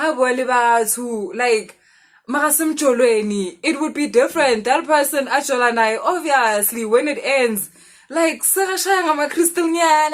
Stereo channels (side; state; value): both; identical; correlation 1.00